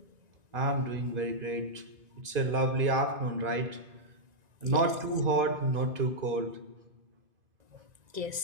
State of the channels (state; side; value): late; left; 2.5 ms